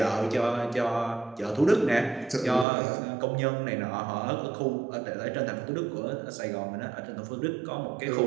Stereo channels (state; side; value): drops out; left; at 2.7 s